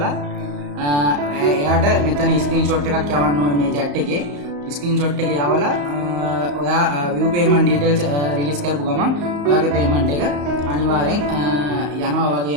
එයාට මෙතන ස්ක්‍රීන්ෂොට් එකක් යවන්න ඕනේ මේ chat එකේ. ස්ක්‍රීන්ෂොට් එක යවලා ඔයා view payment details රිලීස් කරපු ගමන් ඔයාගේ payment එක අනිවාර්යෙන් යනවා.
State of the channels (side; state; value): left; late; 35 ms